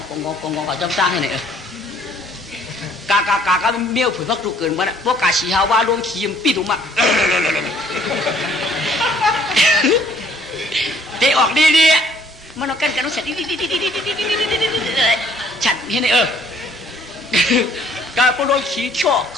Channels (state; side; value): normal; both; correlation 0.61